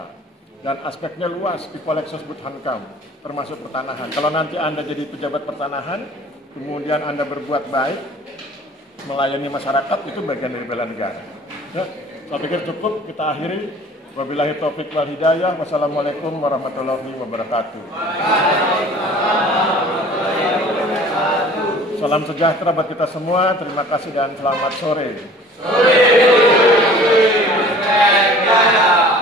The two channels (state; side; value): normal; both; correlation 0.48